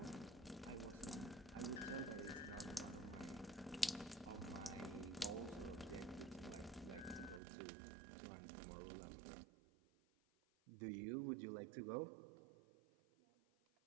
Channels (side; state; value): left; drops out; at 7.4 s